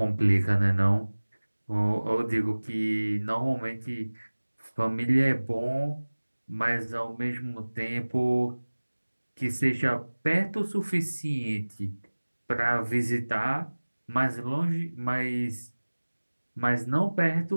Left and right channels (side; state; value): both; inverted; correlation -1.00